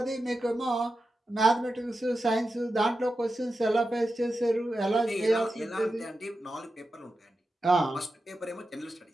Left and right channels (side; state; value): both; normal; correlation 0.91